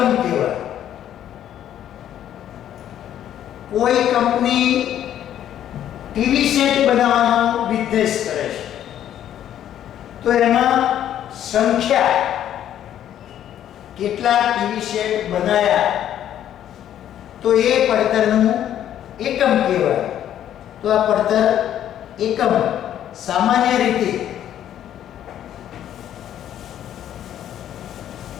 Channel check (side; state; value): right; quieter; 10.9 dB